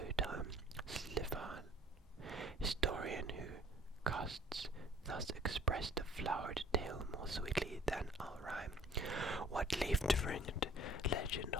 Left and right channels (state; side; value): normal; both; correlation 0.53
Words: time, Slivan, historian who casts thus express the flowered tale more sweetly than I'll rhyme. What leaf-fringed legend